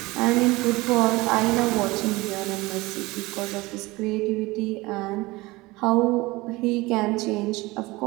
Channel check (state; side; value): quieter; left; 21.4 dB